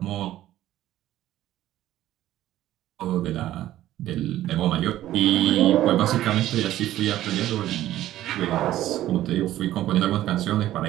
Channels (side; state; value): left; quieter; 13.8 dB